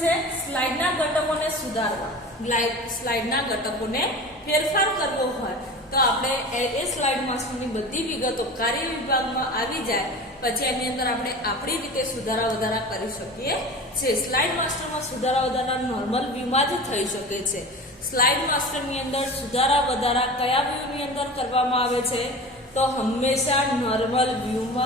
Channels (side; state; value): both; normal; correlation 0.34